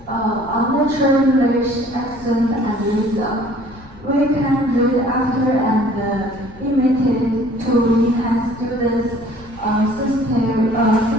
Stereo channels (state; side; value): noise; left; rumble, 22 dB below the sound